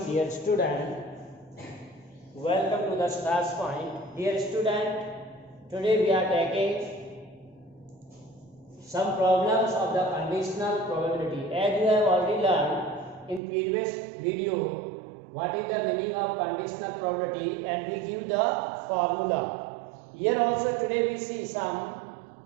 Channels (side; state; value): left; drops out; at 13.4 s